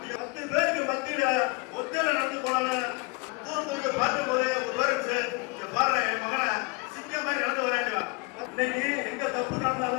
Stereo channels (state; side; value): quieter; right; 28.3 dB